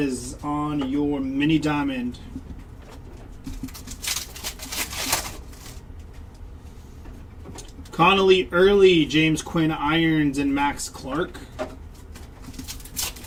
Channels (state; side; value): identical; both; correlation 1.00